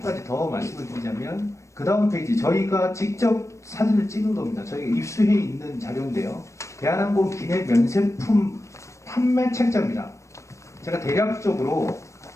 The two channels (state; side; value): late; right; 0.15 ms